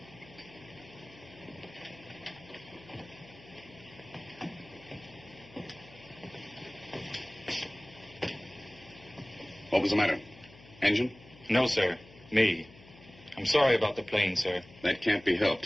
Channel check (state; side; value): noise; left; hum, 22 dB below the sound